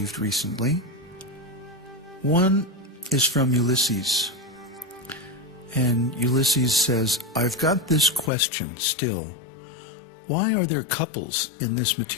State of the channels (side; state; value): right; drops out; at 8.3 s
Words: recently. One is from Ulysses, and Ulysses says, I've got this question still. Why are there couples in this